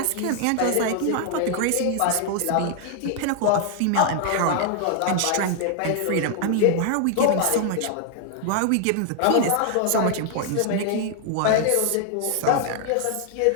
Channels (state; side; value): different; both; correlation 0.00